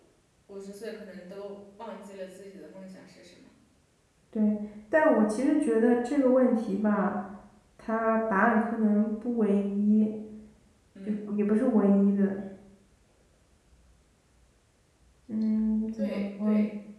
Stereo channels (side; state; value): both; identical; correlation 1.00